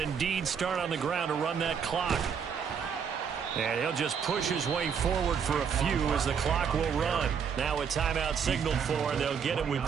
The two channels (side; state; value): left; quieter; 6.9 dB